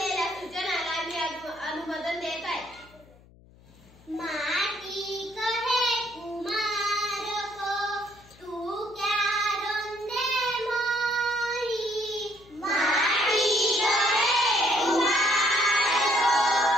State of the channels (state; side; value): noise; left; hum, 26 dB below the sound